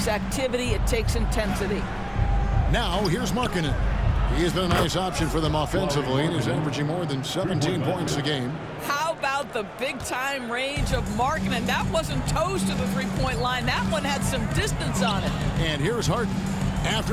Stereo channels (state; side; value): identical; both; correlation 1.00